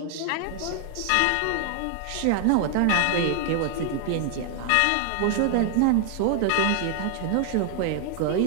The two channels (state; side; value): different; both; correlation 0.00